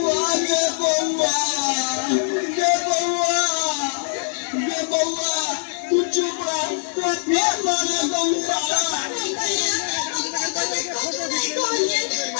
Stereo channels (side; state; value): right; silent; 64 dB below the other